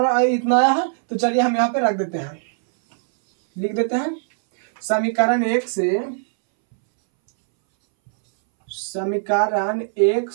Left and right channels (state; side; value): silent; left; 64 dB below the other